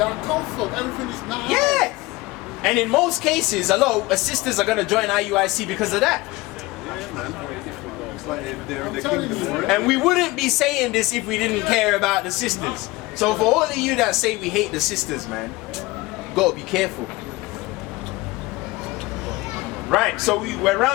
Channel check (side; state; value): right; quieter; 20.9 dB